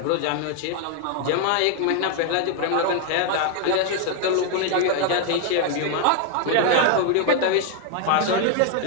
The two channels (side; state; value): both; different; correlation 0.00